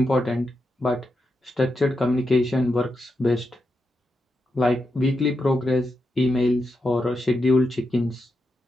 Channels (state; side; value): normal; both; correlation 0.86